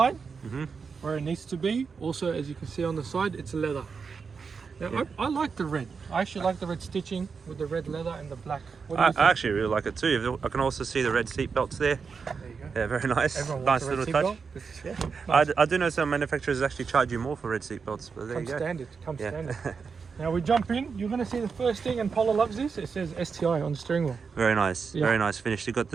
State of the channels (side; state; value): left; quieter; 5.5 dB